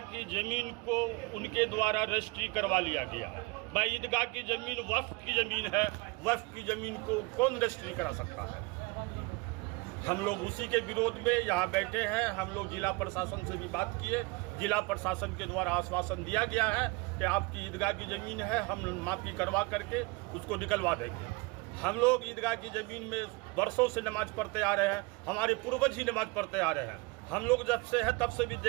की ज़मीन को उनके द्वारा रजिस्ट्री करवा लिया गया है। भाई ईदगाह की ज़मीन वक्फ की ज़मीन है, वक्फ की ज़मीन को कौन रजिस्ट्री करा सकता है। हम लोग उसी के विरोध में यहाँ बैठे हैं। हम लोग जिला प्रशासन से भी बात किए, जिला प्रशासन के द्वारा आश्वासन दिया गया है कि आपकी ईदगाह की ज़मीन है, हम माफ़ी करवा करके उसको निकलवा देंगे। हम लोग ईदगाह की ज़मीन में वर्षों से नमाज पढ़ते आ रहे हैं, हमारे पूर्वज ही नमाज पढ़ते आ रहे हैं। हम लोग जब से है तब से भी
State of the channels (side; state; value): left; quieter; 26.0 dB